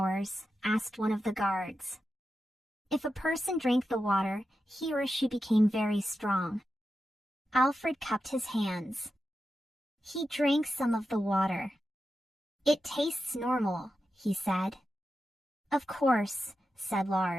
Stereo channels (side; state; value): both; normal; correlation 0.90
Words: Asked one of the guards. If a person drank the water, he or she became very strong. Alfred cupped his hands. He drank some of the water. It tastes normal, he said. Of course, said